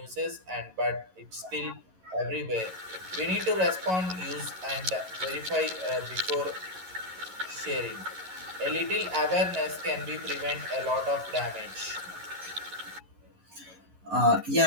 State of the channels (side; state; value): left; late; 11 ms